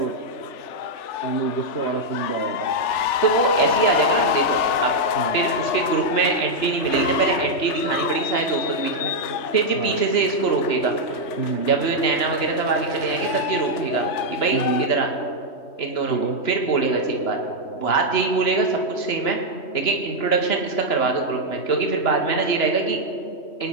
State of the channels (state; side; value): late; right; 3.4 ms